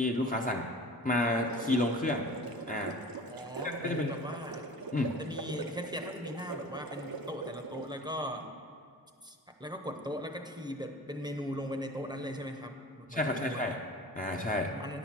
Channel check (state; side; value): normal; both; correlation 0.40